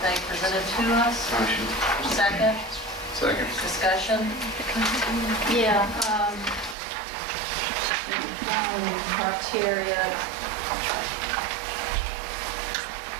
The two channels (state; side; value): drops out; left; at 6.8 s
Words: presented to us? Motion. Second, Second. discussion? Yeah, criteria,